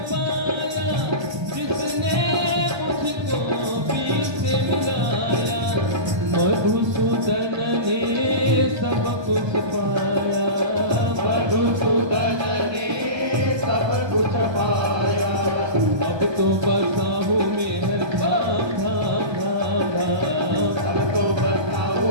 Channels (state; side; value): late; left; 1.2 ms